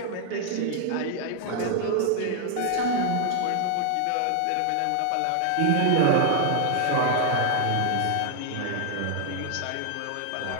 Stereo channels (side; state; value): both; different; correlation 0.00